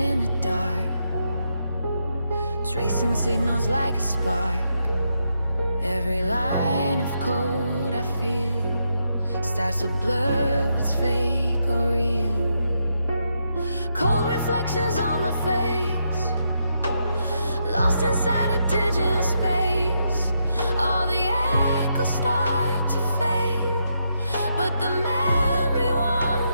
the dark, tracing signals like a spark. Every line of code I feel starts to blur what's fake or real. Cold reflections on my face, lost inside a digital space. All the echoes start to fade, but the memory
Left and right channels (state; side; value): inverted; both; correlation -0.80